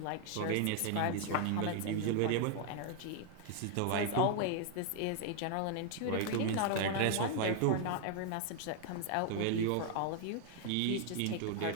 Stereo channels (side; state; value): both; different; correlation 0.00